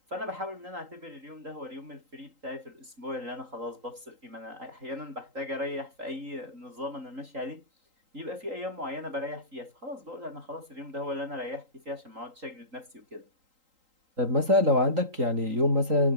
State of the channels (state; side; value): late; left; 3.8 ms